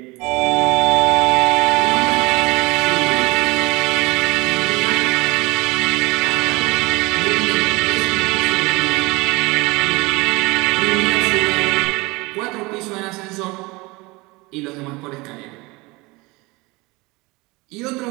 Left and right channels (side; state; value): left; quieter; 23.8 dB